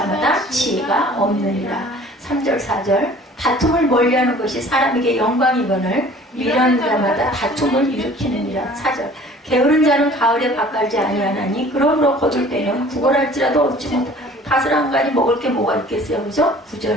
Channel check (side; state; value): both; normal; correlation 0.49